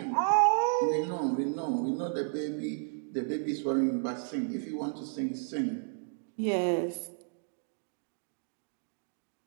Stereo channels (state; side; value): silent; left; digital silence